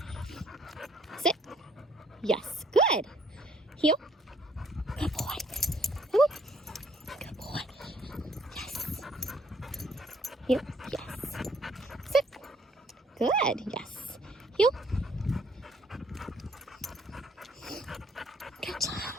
sit, yes, good, heel, good boy, come on. Heel, yes. Sit. Good, yes. Heel. Good job.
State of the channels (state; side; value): normal; both; correlation 0.64